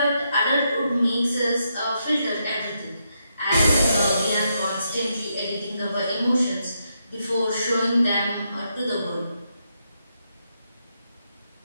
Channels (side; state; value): both; inverted; correlation -0.81